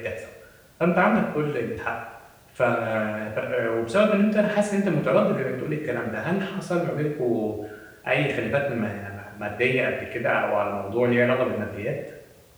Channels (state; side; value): identical; both; correlation 1.00